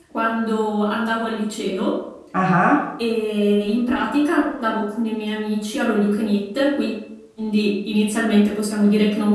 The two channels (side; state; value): both; identical; correlation 1.00